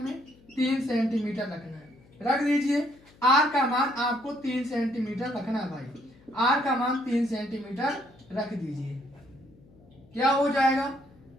3 सेंटीमीटर रखना है, रख दीजिए। r का मान आपको 3 सेंटीमीटर रखना है भाई, r का मान 3 सेंटीमीटर रख दीजिए। क्या हो जाएगा?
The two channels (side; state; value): left; noise; hum, 27 dB below the sound